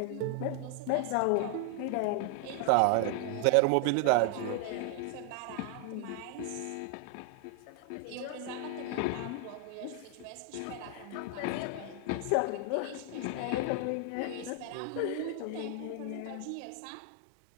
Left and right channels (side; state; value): both; different; correlation 0.00